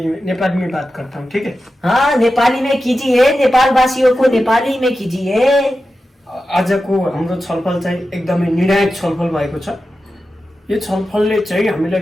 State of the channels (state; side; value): normal; both; correlation 0.92